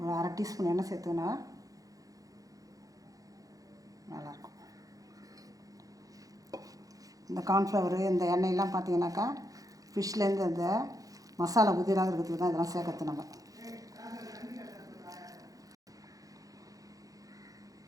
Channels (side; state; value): left; late; 0.17 ms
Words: 1/2 டீஸ்பூன் எண்ணெய் சேர்த்துக்கினா நல்லாயிருக்கும். இந்த கார்ன்ஃப்ளவரு இந்த எண்ணெயெல்லாம் பார்த்தீங்கன்னாக்கா ஃபிஷ்லேருந்து அந்த மசாலா உதிராக இருக்கிறதுக்கு தான் இதெல்லாம் சேர்க்கறது. நம்ம